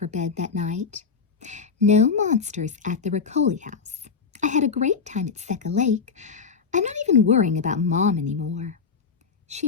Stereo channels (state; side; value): quieter; right; 5.4 dB